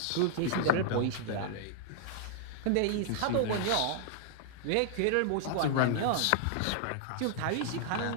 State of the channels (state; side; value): different; both; correlation -0.01